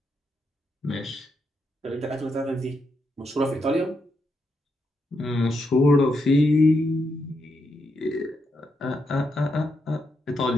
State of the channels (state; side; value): normal; both; correlation 0.82